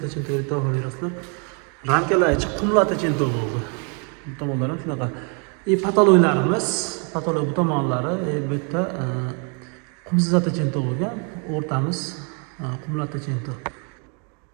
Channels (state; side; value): quieter; left; 37.5 dB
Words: deb baho berasizlar. Ramkalar ichi qumlatachinto bo'ldi. Bu tomonlar ham shunaqa. Patoloylarimiz, patoloy bu tomonlari bu yerda qumsatachinto bo'lgan, o'rtamiz qumlatachinto.